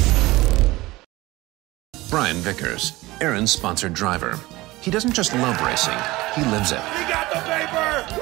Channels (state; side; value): quieter; left; 19.6 dB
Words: Vickers, Aaron's sponsored driver. He doesn't just love racing, he lives it. We got the paper!